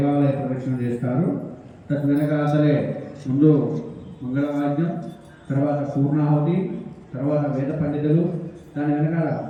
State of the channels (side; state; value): both; identical; correlation 1.00